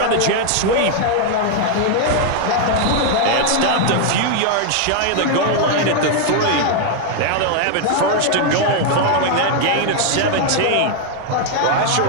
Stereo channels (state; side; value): different; both; correlation 0.00